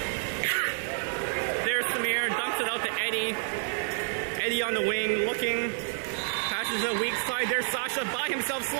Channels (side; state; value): left; silent; 59 dB below the other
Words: There's Samir, dumps it out to Eddie. Eddie on the wing, looking. Passes a weak side. There's Sasha by himself,